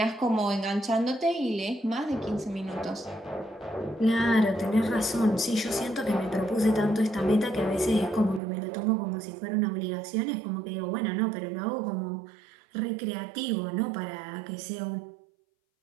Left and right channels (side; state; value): left; drops out; at 8.4 s